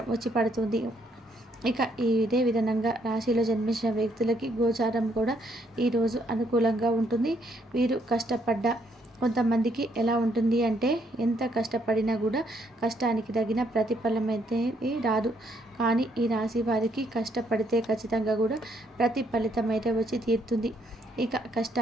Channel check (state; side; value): normal; both; correlation 0.71